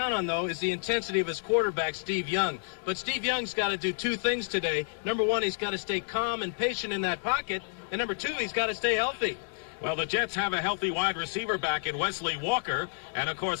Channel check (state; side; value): silent; right; digital silence